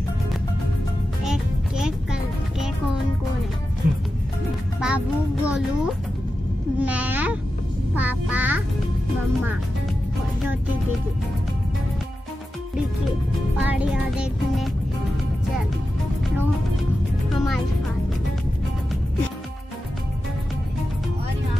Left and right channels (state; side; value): normal; both; correlation 0.91